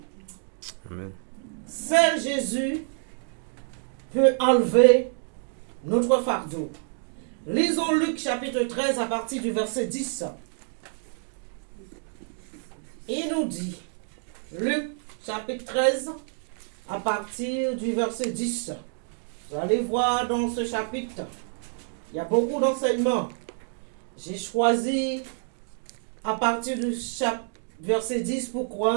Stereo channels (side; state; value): left; silent; 60 dB below the other